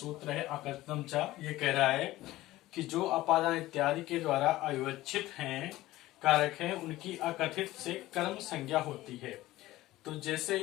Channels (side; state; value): right; quieter; 16.8 dB